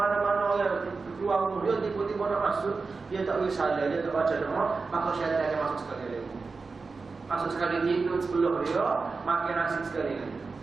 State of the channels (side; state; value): left; quieter; 4.3 dB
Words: orang keluar rumah dia tiba-tiba nak masuk, dia tak boleh salah, dia tak baca doa, maka syaitan akan masuk sekali lagi. Masuk sekali tidur sebelum dia makan nasi sekali lagi.